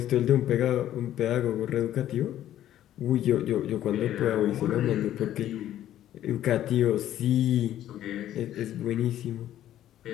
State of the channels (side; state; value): right; quieter; 12.2 dB